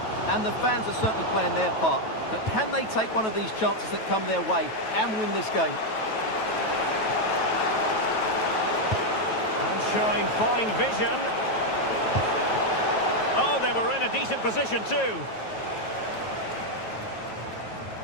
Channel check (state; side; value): late; right; 9.2 ms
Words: And the fans are certainly playing their part. But can they take one of these chances that come their way and win this game? And showing fine vision. Oh, they were in a decent position too.